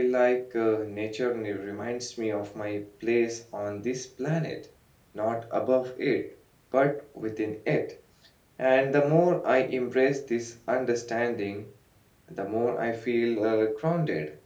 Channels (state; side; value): identical; both; correlation 1.00